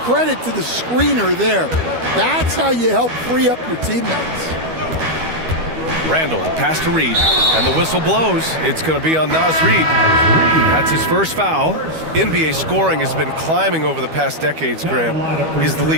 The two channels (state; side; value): late; left; 12 ms